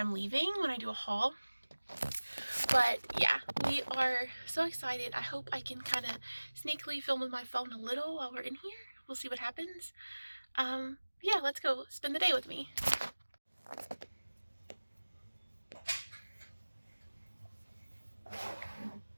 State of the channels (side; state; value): both; inverted; correlation -1.00